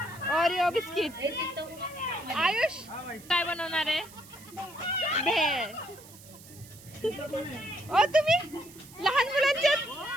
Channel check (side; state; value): right; noise; hiss, 20 dB below the sound